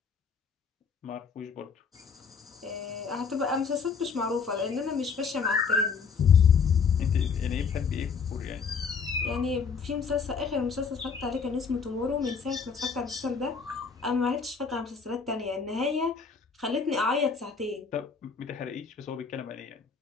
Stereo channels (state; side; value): quieter; right; 5.7 dB